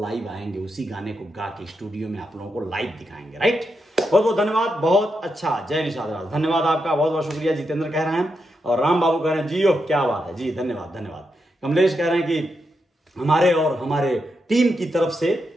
लाइव आएंगे, उसी गाने को गा के स्टूडियो में आप लोगों को लाइव दिखाएंगे, राइट? बहुत बहुत धन्यवाद, बहुत अच्छा, जय निषाद राज, धन्यवाद आपका, बहुत बहुत शुक्रिया। जितेंद्र कह रहे हैं और राम बाबू कह रहे हैं जियो, क्या बात है जी, धन्यवाद धन्यवाद। कमलेश कह रहे हैं कि हमारे और हमारे टीम की तरफ से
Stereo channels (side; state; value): both; normal; correlation 0.84